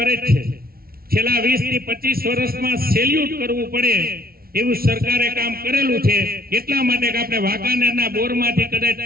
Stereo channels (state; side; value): late; left; 0.44 ms